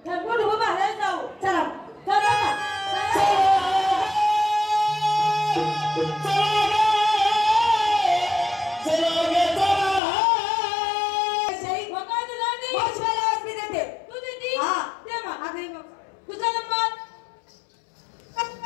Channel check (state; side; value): drops out; right; at 10.0 s